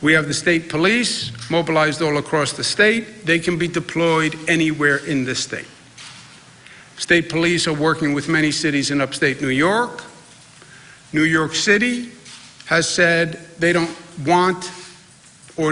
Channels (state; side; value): identical; both; correlation 1.00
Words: We have the state police mobilized all across the state. They can be deployed anywhere in the state. State police are working with many cities in upstate New York. New York City has said they don't want or